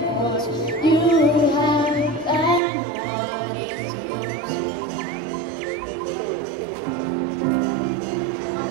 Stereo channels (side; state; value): left; drops out; at 2.6 s